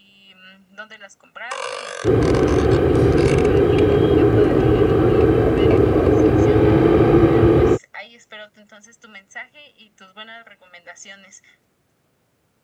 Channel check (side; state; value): both; identical; correlation 1.00